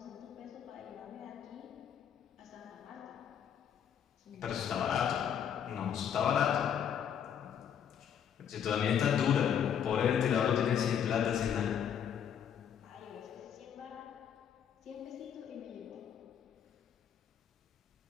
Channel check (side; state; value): right; quieter; 8.6 dB